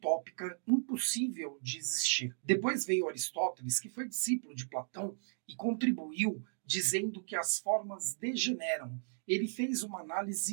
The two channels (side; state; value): left; silent; digital silence